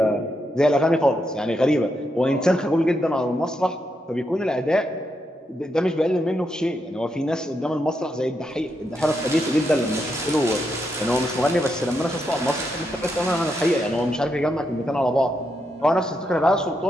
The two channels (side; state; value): both; normal; correlation 0.82